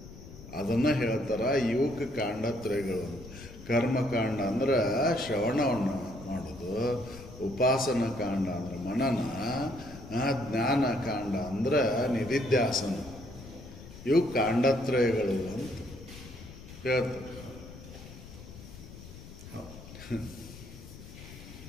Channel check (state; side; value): noise; left; rumble, 15 dB below the sound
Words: ಅದನ್ನು ಹೇಳ್ತಾರ ಇವಕ್ಕೆ ಕಾಂಡತ್ರಯಗಳು. ಕರ್ಮಕಾಂಡ ಅಂದ್ರೆ ಶ್ರವಣವನ್ನು ಮಾಡೋದು, ಉಪಾಸನ ಕಾಂಡ ಅಂದ್ರೆ ಮನನ, ಜ್ಞಾನ ಕಾಂಡ ಅಂದ್ರೆ ನಿಧಿಧ್ಯಾಸನ. ಇವು ಕಾಂಡತ್ರಯಗಳು ಅಂತ ಹೇಳ್ತಾರೆ.